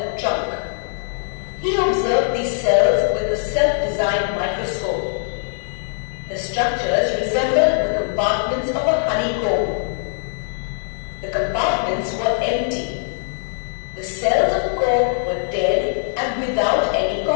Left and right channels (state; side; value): silent; right; digital silence